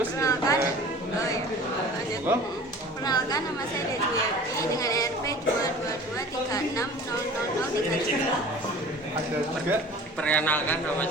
Perkenalkan, nama saya Dejuyati dengan NRP 222360037. ada juga. Perkenalkan, nama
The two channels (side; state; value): both; normal; correlation 0.43